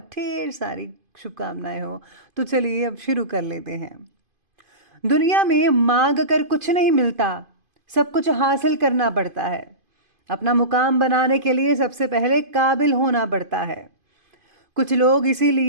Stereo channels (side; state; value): left; late; 2.5 ms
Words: ढेर सारी शुभकामनाएं हो। तो चलिए अब शुरू कर लेते हैं। दुनिया में मांग कर कुछ नहीं मिलता, सब कुछ हासिल करना पड़ता है। अपना मुकाम बनाने के लिए सबसे पहले काबिल होना पड़ता है। कुछ लोग